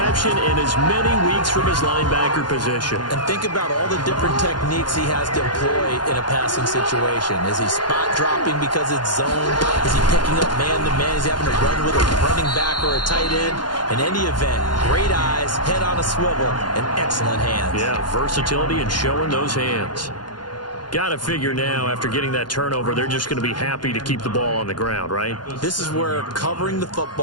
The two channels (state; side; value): late; right; 0.71 ms